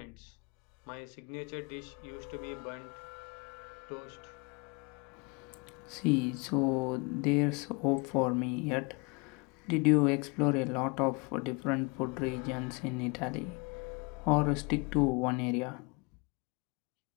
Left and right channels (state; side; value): quieter; right; 29.6 dB